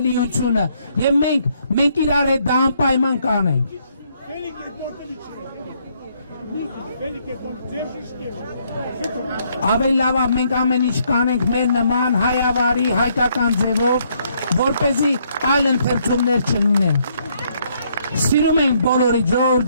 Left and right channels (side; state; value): both; inverted; correlation -0.70